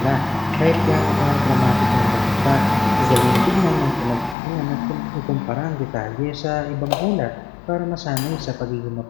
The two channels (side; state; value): right; drops out; at 4.4 s